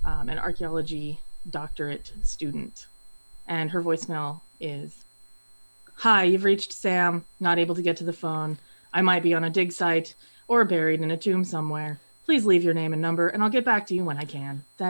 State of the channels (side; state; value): both; inverted; correlation -1.00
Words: archaeology doctorate student, and her voicemail is, "Hi, you've reached Sam, not able to get to the phone. I might be on a dig site or buried in a tomb somewhere. Please leave your name and number, and I'll get back to you when I can.